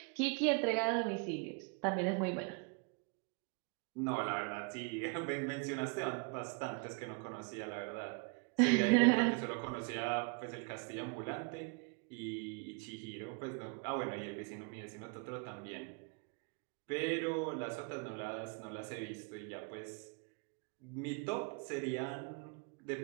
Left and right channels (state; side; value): quieter; left; 33.8 dB